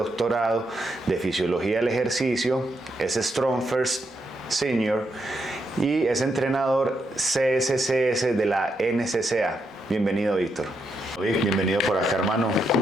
de fisiología del ejercicio, es Strong First Senior y es entrenador CSCS de la NCCA. Bienvenido, Víctor. Bienvenido por acá, hermano.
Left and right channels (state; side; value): normal; both; correlation 0.80